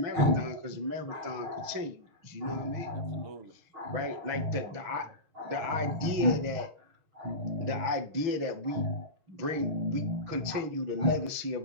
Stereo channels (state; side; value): late; left; 6.1 ms